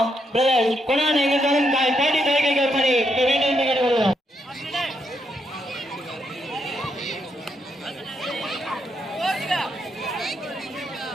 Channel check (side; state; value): both; normal; correlation 0.79